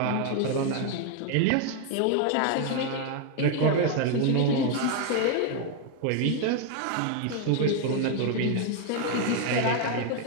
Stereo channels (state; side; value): different; both; correlation 0.01